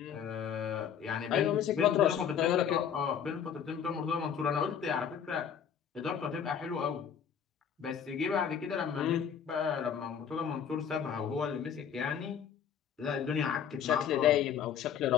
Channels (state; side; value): quieter; right; 8.1 dB